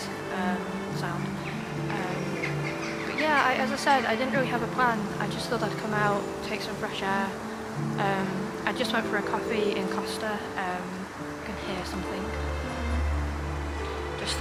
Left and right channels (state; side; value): identical; both; correlation 1.00